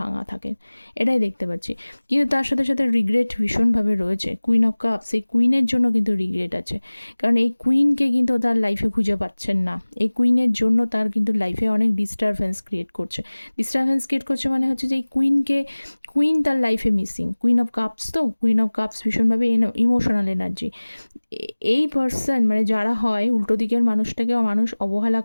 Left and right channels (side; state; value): both; inverted; correlation -1.00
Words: থাকেন, এটাই দেখতে পাচ্ছি। কিন্তু তার সাথে সাথে রিগ্রেট ভীষণভাবে রয়েছে। কুইন অফ কাপস, এই কুইনের জন্য কিন্তু রিগ্রেট আছে, কারণ এই কুইনকে কিন্তু তার লাইফে খুঁজে পাচ্ছেন না। এই কুইনের জন্য তার কিন্তু লাইফে অনেক ডিস্টারবেন্স ক্রিয়েট করছে মানে হচ্ছে যে এই কুইন তার লাইফে মিসিং। কুইন অফ কাপস, তো কুইন অফ কাপস ভীষণভাবে ইমোশনাল এনার্জি। এই পার্সন মানে যারা হয় উল্টো দিকের মানুষটাকে মানুষ অবহেলা